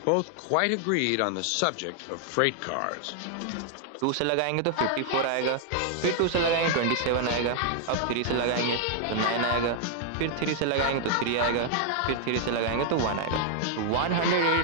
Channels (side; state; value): both; different; correlation 0.00